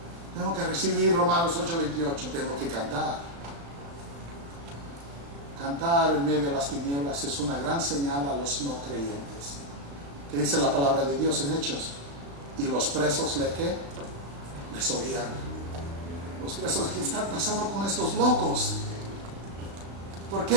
Tengo que recibir Romanos 8:28. Tengo que cantar. Cantar en medio de las tinieblas es una gran señal a los no creyentes. ¿Qué dice la palabra de Dios en Hechos? Y los presos les oían. Los presos: ¿qué están pasando con estos locos? ¿Por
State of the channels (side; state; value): left; late; 35 ms